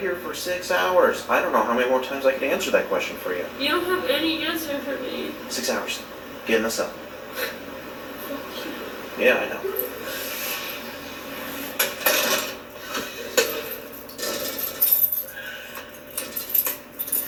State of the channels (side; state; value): both; identical; correlation 1.00